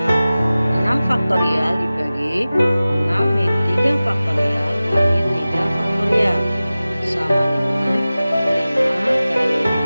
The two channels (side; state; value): both; inverted; correlation -0.97